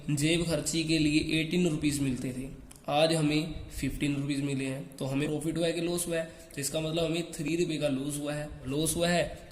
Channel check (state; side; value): identical; both; correlation 1.00